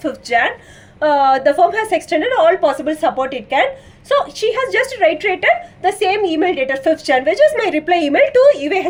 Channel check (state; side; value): identical; both; correlation 1.00